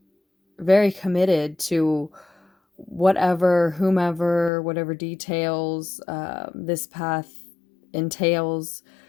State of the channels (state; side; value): drops out; right; at 4.5 s